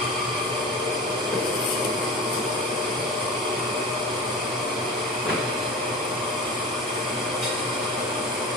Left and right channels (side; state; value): both; normal; correlation 0.32